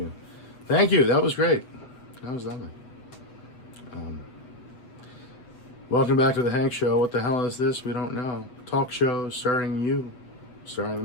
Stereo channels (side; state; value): right; late; 7.9 ms